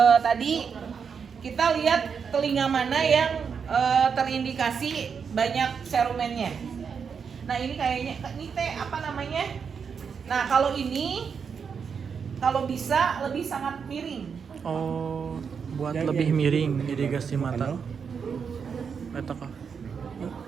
tadi, kita lihat telinga mana yang terindikasi banyak serumennya. Nah ini kayaknya, ini teh apa namanya? Nah kalau ini, kalau bisa lebih sangat miring. Oh, buat lebih miring irigasi mata. Eta kah?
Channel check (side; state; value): left; quieter; 6.4 dB